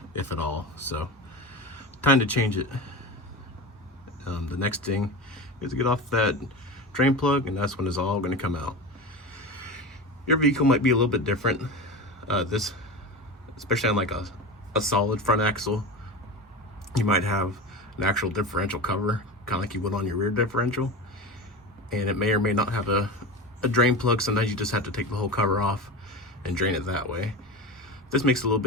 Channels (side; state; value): both; normal; correlation 0.26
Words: if at all. So time to change it. The next thing is to get off that drain plug, and that's when it's all going to come out. Your vehicle might be a little bit different. This, especially on like a solid front axle, you might have an actual differential cover, kind of like you would on your rear differential, and it may or may not have a drain plug. Sometimes you just have to take the whole cover off and drain it that way. This makes it a little